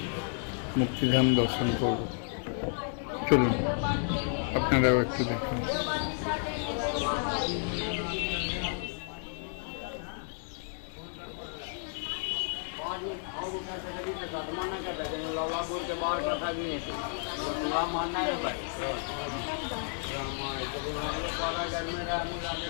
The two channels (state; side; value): silent; right; 57 dB below the other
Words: মুক্তিধাম দর্শন করব। চলুন আপনারাও একটু দেখুন।